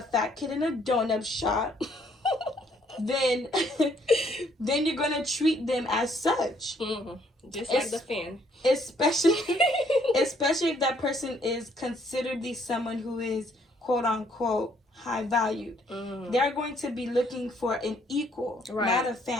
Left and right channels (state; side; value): normal; both; correlation 0.66